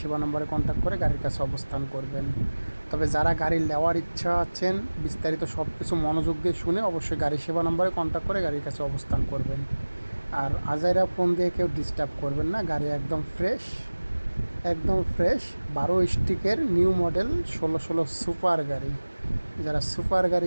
সেবা নম্বরে কন্ট্যাক্ট করে গাড়ির কাছে অবস্থান করবেন। তবে যারা গাড়ি নেওয়ার ইচ্ছা আছেন, বিস্তারিত সব কিছু মনোযোগ দিয়ে শুনে অবশ্যই গাড়ি সেবা নম্বরে কন্ট্যাক্ট করে গাড়ির কাছে অবস্থান করবেন। আর আজাইরা ফোন দিয়ে কেউ ডিস্টার্ব করবেন না, গাড়ি একদম ফ্রেশ, একদম ফ্রেশ 12 স্টিকের নিউ মডেল 16 সুপার গাড়ি। যারা সুপার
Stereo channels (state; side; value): inverted; both; correlation -1.00